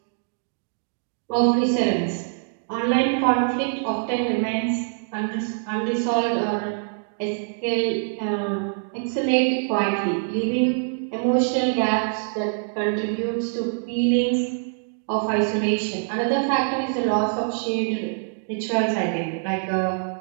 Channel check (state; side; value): silent; left; digital silence